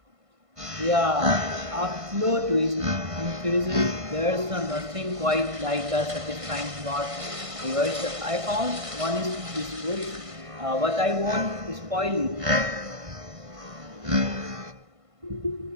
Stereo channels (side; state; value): left; late; 1.5 ms